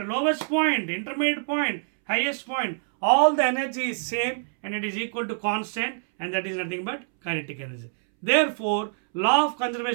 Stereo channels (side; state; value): left; silent; 61 dB below the other